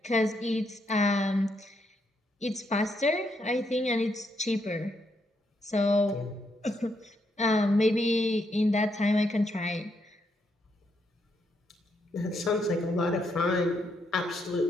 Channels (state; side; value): normal; both; correlation 0.77